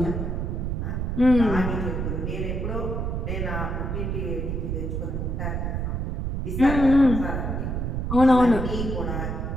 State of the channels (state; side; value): noise; right; rumble, 2 dB below the sound